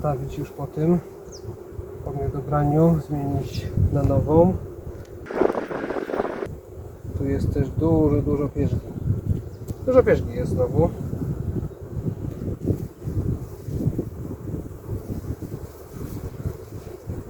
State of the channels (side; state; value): both; identical; correlation 1.00